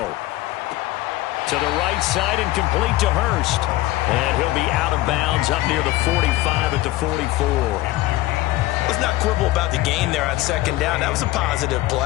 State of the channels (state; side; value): quieter; right; 17.2 dB